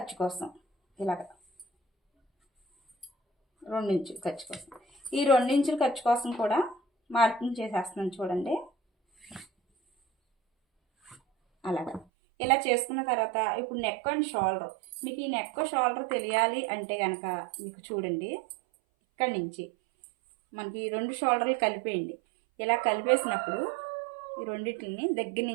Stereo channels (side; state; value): left; drops out; at 12.1 s